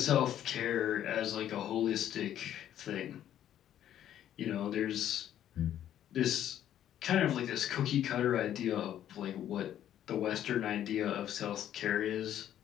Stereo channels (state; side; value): quieter; right; 11.1 dB